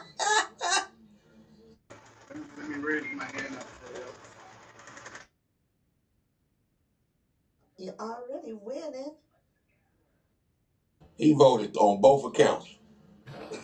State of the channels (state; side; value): identical; both; correlation 1.00